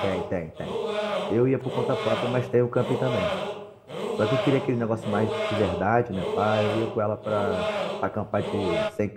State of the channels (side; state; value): both; identical; correlation 1.00